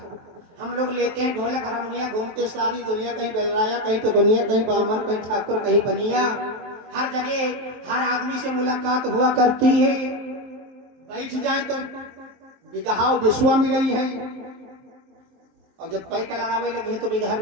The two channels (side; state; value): left; late; 23 ms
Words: हम लोग लेते हैं ढोलक हारमोनिया, घूमते सारी दुनिया, कहीं बेलराया, कहीं तो दुनिया, कहीं बामन, कहीं ठाकुर, कहीं बनिया। हर जगह हर आदमी से मुलाकात हुआ करती है। बैठ जाए तो बिगहा विश्वा मिली है और जब पैक लड़ावे लगे तो बिगहा